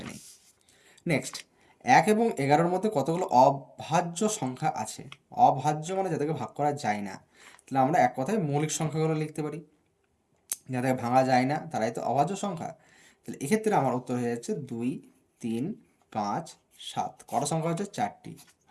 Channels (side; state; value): both; identical; correlation 1.00